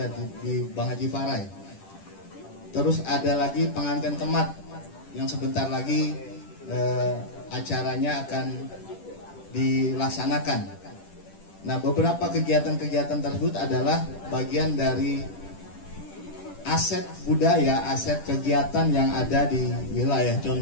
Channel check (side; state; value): right; late; 10 ms